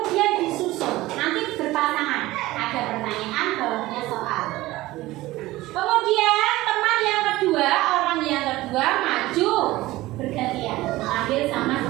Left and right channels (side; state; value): left; quieter; 18.0 dB